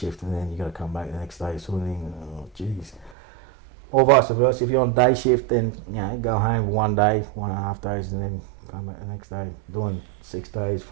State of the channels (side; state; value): left; drops out; at 3.2 s